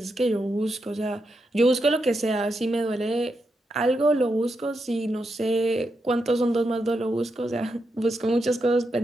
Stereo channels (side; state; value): both; normal; correlation 0.84